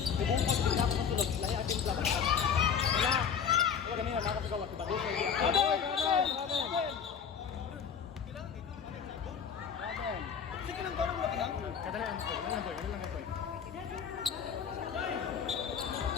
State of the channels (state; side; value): quieter; right; 7.1 dB